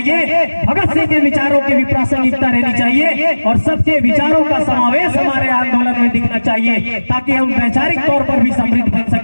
भगत सिंह के विचारों की भी प्रासंगिकता रहनी चाहिए और सबके विचारों का समावेश हमारे आंदोलन में दिखना चाहिए, ताकि हम वैचारिक तौर पर भी समृद्ध बन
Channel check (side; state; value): both; inverted; correlation -1.00